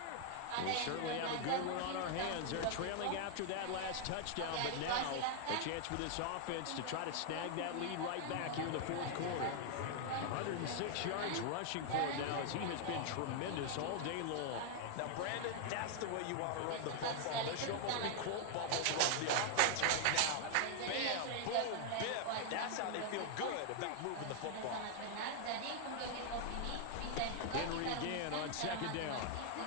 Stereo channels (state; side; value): different; both; correlation 0.00